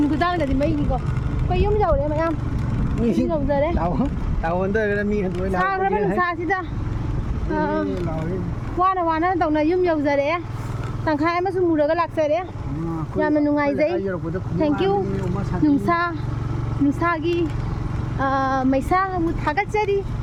của ta là gì mấy cái quay yếm dầu đấy mày em yếm dầu giờ đấy Tao under ka mi han xa nó bên xa chứ ta qua nó tổng này yếm dầu giờ đấy thằng khai mà sung mù được cái lạc giờ đấy nhà mình nung ngày giấy thank you nung xa gi mày xa một thằng cách chơi đi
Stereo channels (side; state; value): both; identical; correlation 1.00